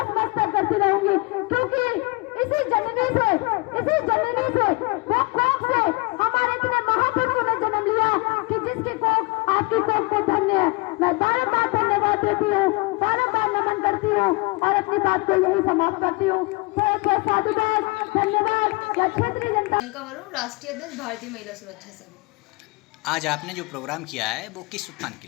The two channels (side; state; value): right; quieter; 25.7 dB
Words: करती रहूंगी, क्योंकि इसी जननी से वो कोख से हमारे इतने महापुरुषों ने जन्म लिया कि जिसकी कोख आपकी कोख को धन्य है। मैं बारंबार धन्यवाद देती हूँ, बारंबार नमन करती हूँ और अपनी बात को यही समाप्त करती हूँ। साधुवाद, धन्यवाद। या क्षेत्रीय जनता राष्ट्रीय अध्यक्ष भारतीय महिला सुरक्षा संघ। आज आपने जो प्रोग्राम किया है वो किस उत्थान के